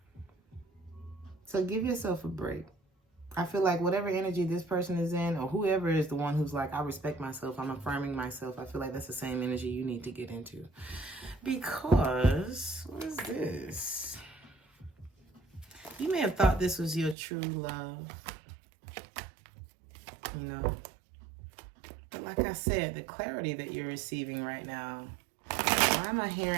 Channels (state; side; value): drops out; left; at 17.2 s